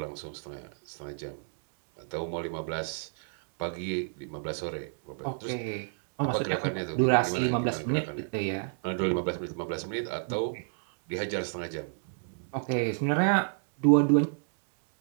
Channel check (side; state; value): left; silent; 58 dB below the other